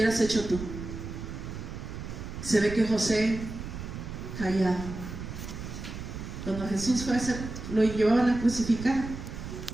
hecho tú? Se ve que José callado. Cuando Jesús fue a hacer, lo llevaban a crucificar,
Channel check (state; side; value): noise; right; rumble, 8 dB below the sound